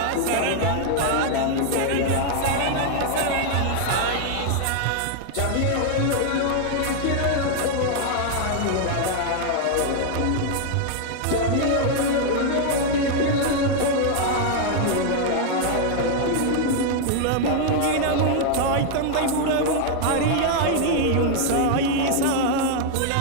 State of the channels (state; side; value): different; both; correlation 0.00